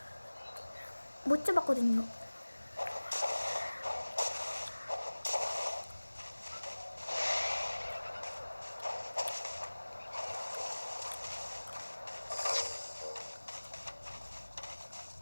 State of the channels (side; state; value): both; inverted; correlation -1.00